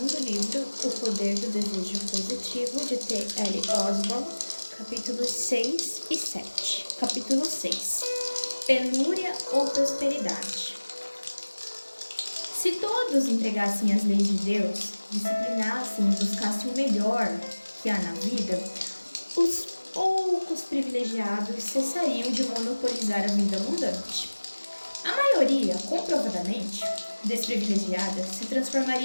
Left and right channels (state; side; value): inverted; both; correlation -1.00